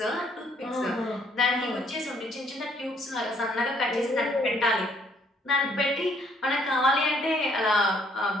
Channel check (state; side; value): normal; both; correlation 0.66